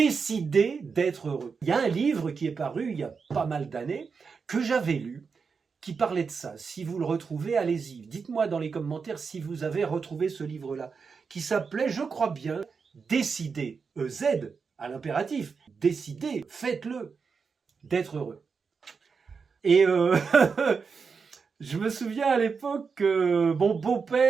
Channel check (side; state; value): left; quieter; 5.4 dB